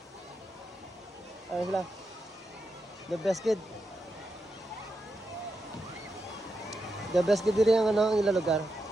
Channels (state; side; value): normal; both; correlation 0.86